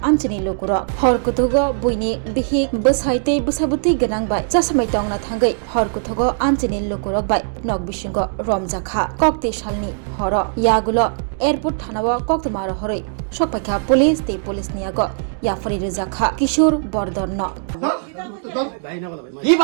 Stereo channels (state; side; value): silent; left; digital silence